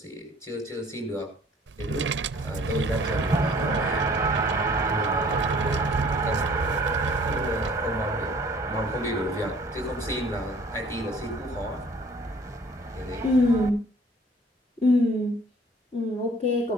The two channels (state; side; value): normal; both; correlation 0.54